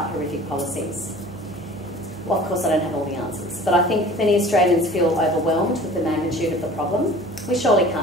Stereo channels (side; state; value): both; normal; correlation 0.45